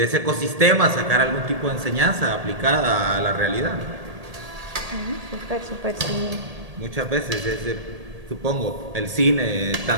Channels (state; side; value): late; left; 1.8 ms